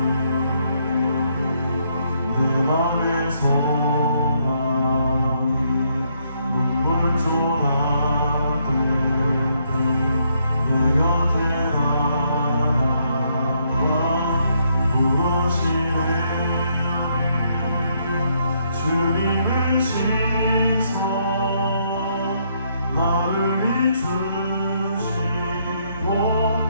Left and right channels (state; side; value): inverted; both; correlation -0.73